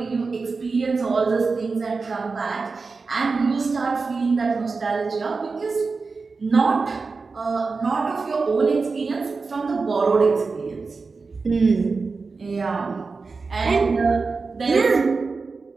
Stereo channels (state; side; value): quieter; left; 4.3 dB